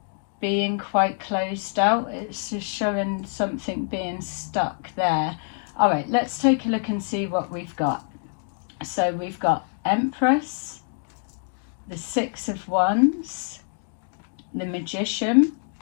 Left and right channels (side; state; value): right; silent; 61 dB below the other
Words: being quite closed out. It's just showing something being stuck there. All right, let's take a look and see what we've got. So we've got Empress, the Six of Wands, the Magician,